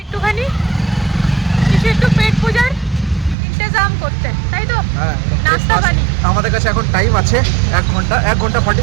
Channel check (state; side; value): drops out; left; at 3.4 s